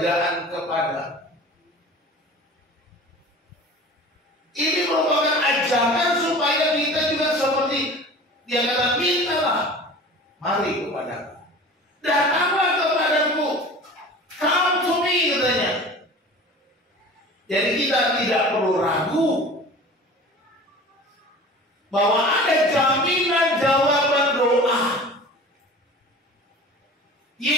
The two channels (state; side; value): normal; both; correlation 0.39